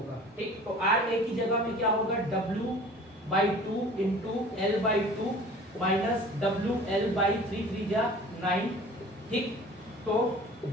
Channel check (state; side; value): normal; both; correlation 0.45